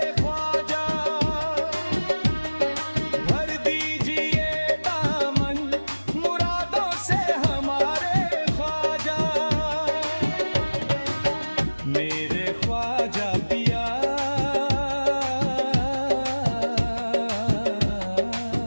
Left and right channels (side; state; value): both; inverted; correlation -1.00